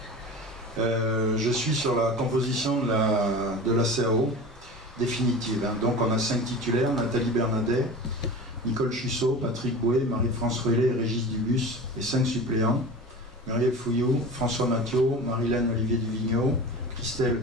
Je suis sur la composition de la CAO définitive. Hein. Donc on a 5 titulaires: Nathalie Bernadet, Nicole Chussot, Patrick Bouet, Marie-France Ruelet et Régis Dubus, et 5 suppléants: Muriel Fouillou, François Mathieu, Marilène Olivier Duvigneau, Christelle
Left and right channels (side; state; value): both; normal; correlation 0.34